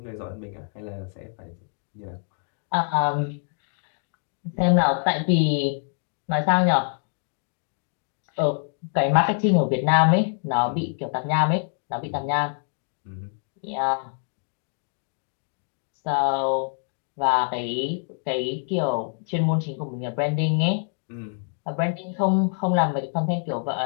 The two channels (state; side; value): silent; right; 57 dB below the other